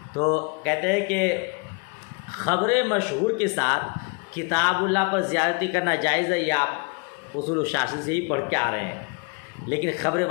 تو کہتے ہیں کہ خبر مشہور کے ساتھ کتاب اللہ پر زیادتی کرنا جائز ہے، یہ آپ اصول الشاشی سے ہی پڑھ کے آ رہے ہیں، لیکن خبر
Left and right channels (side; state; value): right; quieter; 33.4 dB